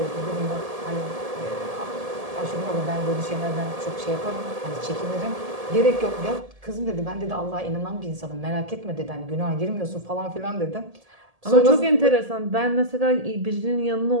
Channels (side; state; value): left; late; 1.7 ms